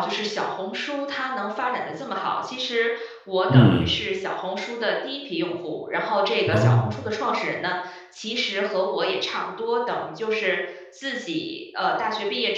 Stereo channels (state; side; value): identical; both; correlation 1.00